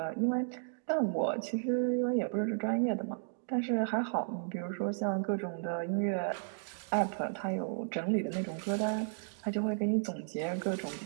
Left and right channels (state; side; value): silent; left; digital silence